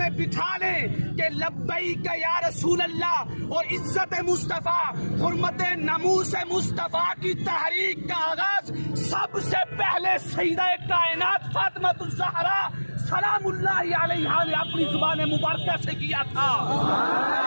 بٹھا لیں کہ لبیک یا رسول اللہ اور عزت مصطفیٰ، حرمت ناموس مصطفیٰ کی تحریک کا آغاز سب سے پہلے سیدہ کائنات فاطمہ الزہرا سلام اللہ علیہا نے اپنی زبان مبارکہ سے کیا تھا۔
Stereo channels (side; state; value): both; inverted; correlation -1.00